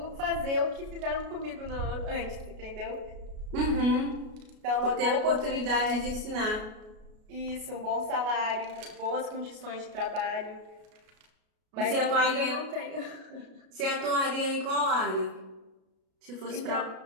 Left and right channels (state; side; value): late; left; 33 ms